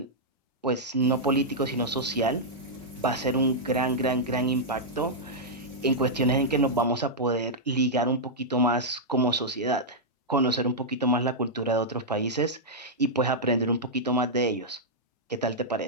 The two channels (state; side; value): normal; both; correlation -0.07